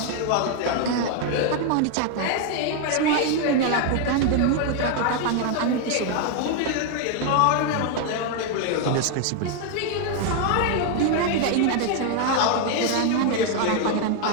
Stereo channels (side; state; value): both; different; correlation 0.01